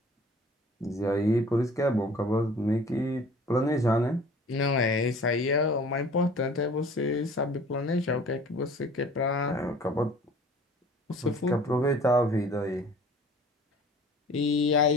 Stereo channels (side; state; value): both; normal; correlation 0.48